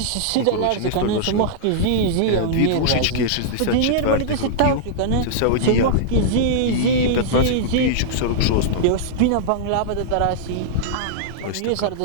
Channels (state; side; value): different; both; correlation -0.02